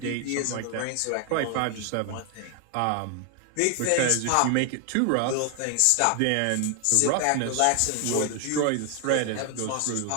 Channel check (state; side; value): different; both; correlation 0.00